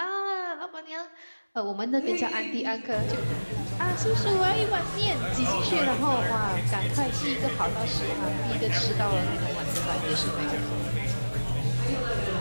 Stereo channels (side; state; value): both; inverted; correlation -1.00